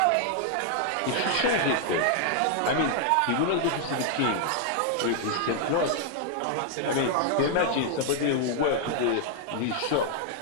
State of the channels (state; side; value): different; both; correlation 0.00